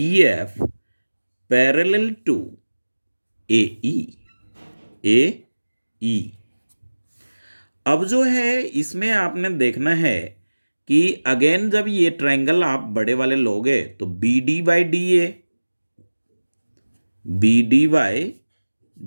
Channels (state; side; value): inverted; both; correlation -1.00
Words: एफ पैरेलल टू ए ई। अब जो है इसमें आपने देखना है कि अगेन जब ये ट्रायंगल आप बड़े वाले लोगे तो B D by D A, B D by